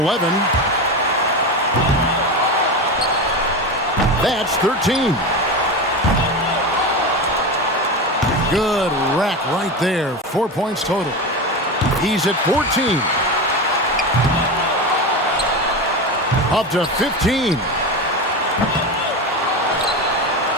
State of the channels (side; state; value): both; normal; correlation 0.21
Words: That's 13. Good rack right there. 4 points total. He's at 14. Up to 15.